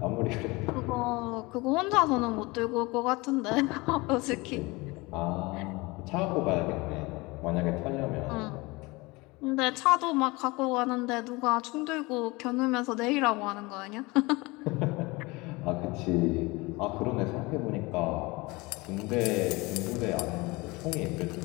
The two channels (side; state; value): right; quieter; 23.9 dB